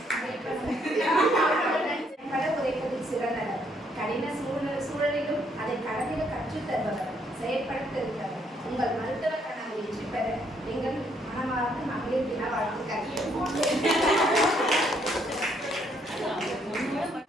உரைப்பதில் சிறந்தவர், கடின சூழலிலும் அதை கடந்திட கற்றுத் தருபவர், செயற்படுத்திருப்பவர். உங்கள் மருத்துவ கனவு வெற்றி பெற எங்கள் மனமார்ந்த மகளிர் தின வாழ்த்துக்கள்.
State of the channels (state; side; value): normal; both; correlation 0.70